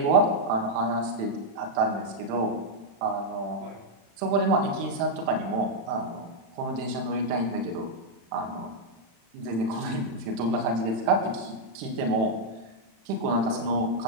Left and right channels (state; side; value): late; left; 36 ms